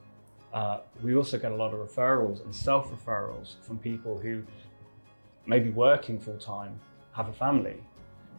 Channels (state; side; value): inverted; both; correlation -1.00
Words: We also get a lot of referrals and self-referrals from people who may be working full-time, have a family,